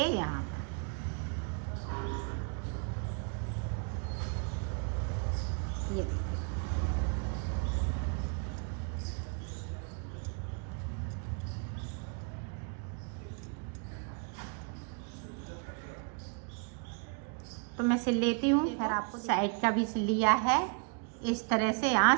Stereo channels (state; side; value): quieter; left; 37.9 dB